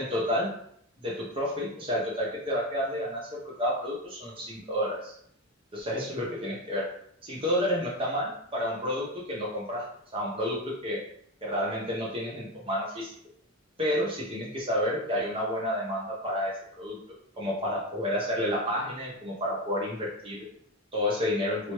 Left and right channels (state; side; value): normal; both; correlation 0.16